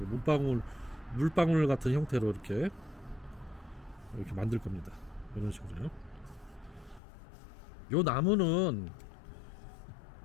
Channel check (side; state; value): right; drops out; at 7.0 s